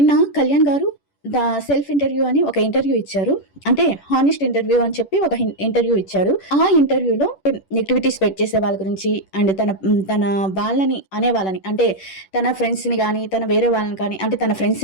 కళ్యాణ్ గారు సెల్ఫ్ ఇంటర్వ్యూ అని ఒక ఇంటర్వ్యూ ఇచ్చారు. అంటే హానెస్ట్ ఇంటర్వ్యూ అని చెప్పి ఒక ఇంటర్వ్యూ ఇచ్చారు. ఆ ఇంటర్వ్యూలో నెగిటివిటీ స్ప్రెడ్ చేసే వాళ్ళ గురించి అండ్ తన వాళ్ళని అనే వాళ్ళని, అంటే తన ఫ్రెండ్స్ని కానీ, తన వేరే వాళ్ళని కానీ, అంటే తన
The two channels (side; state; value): right; late; 10 ms